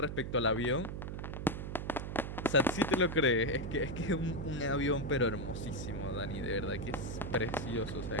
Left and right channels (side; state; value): right; noise; hum, 5 dB below the sound